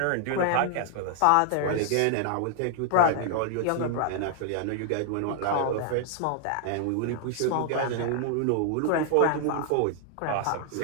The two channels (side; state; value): both; different; correlation 0.00